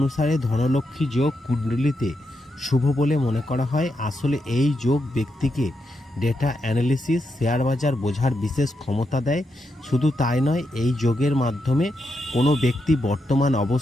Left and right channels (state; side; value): normal; both; correlation 0.83